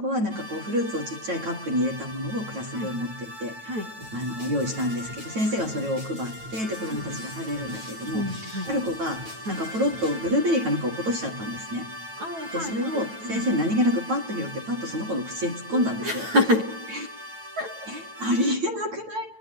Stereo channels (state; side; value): late; left; 9.1 ms